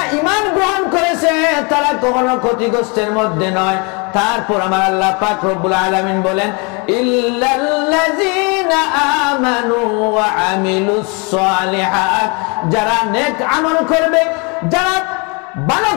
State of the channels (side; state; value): right; quieter; 31.9 dB